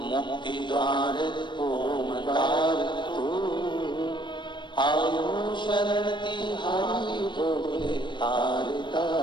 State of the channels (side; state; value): right; late; 0.22 ms